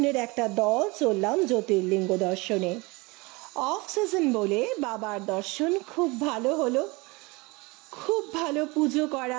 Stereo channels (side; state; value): left; quieter; 25.1 dB